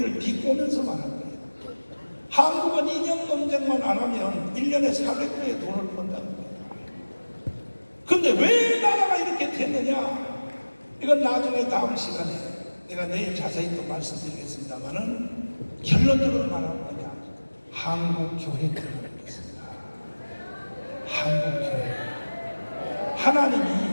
비꼬면서 말한 거예요. 한국은 이념 논쟁만 안 하면 1년에 400조의 돈을 번다는 거예요. 근데 왜 나라가 이렇게 됐느냐? 이건 나중에 다음 시간에 내가 내일 자세히 또 말씀드리겠습니다만은 결론적으로 말하는 거냐? 한국교회 때문에 그렇습니다. 한국교회.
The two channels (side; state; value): both; inverted; correlation -1.00